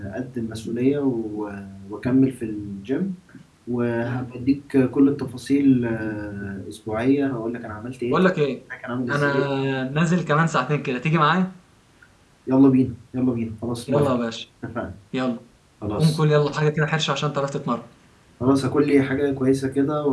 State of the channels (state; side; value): identical; both; correlation 1.00